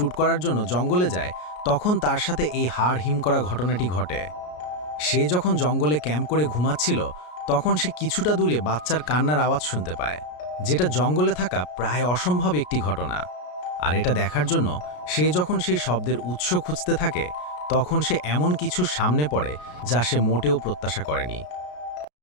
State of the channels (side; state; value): right; late; 33 ms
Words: করার জন্য জঙ্গলে যায়, তখন তার সাথে এই হাড় হিম করা ঘটনাটি ঘটে। সে যখন জঙ্গলে ক্যাম্প করে ঘুমাচ্ছিল, তখন সে কিছুটা দূরে বাচ্চার কান্নার আওয়াজ শুনতে পায়, যেটা জঙ্গলে থাকা প্রায় অসম্ভব একটি ঘটনা। আর এটা দেখার জন্য সে যখন সেই শব্দের উৎস খুঁজতে থাকে, তখন সে এমন কিছুর সামনে পড়ে যা সে মোটেও প্রত্যাশা করেনি।